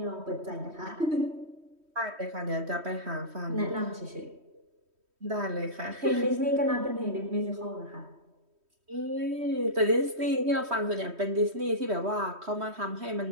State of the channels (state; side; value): late; left; 3.1 ms